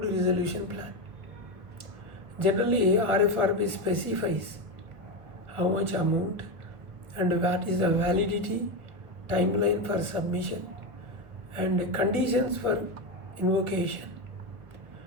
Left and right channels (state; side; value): late; left; 1.6 ms